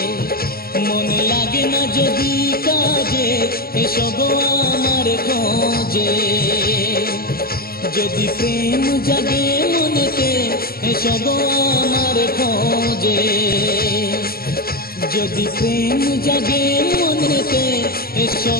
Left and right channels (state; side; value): late; right; 0.44 ms